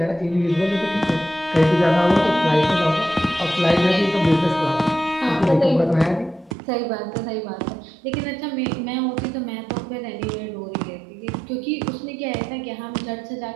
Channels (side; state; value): left; drops out; at 6.6 s